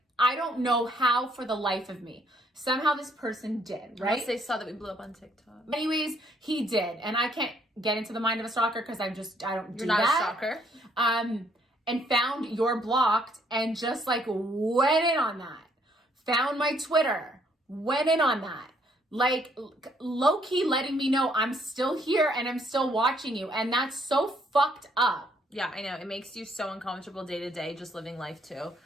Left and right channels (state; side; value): normal; both; correlation 0.68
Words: I don't know how for the life of me. Somehow this person did, right? Unless they saw that we blew up on TikTok. Anyways, he did. And I can't get into the mind of a stalker because I don't do that. You're not a stalker. And found you're blocked and just like went in on that. Found my Twitter, went in on that. Like low-key letting me know I'm still here and I'm still watching you. And that's so fucked up. Yeah, I know. It makes you so uncomfortable day to day just living life too.